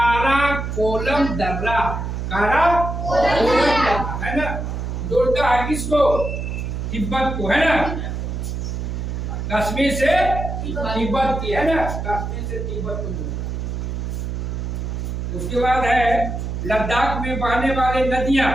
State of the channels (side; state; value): right; noise; hum, 4 dB below the sound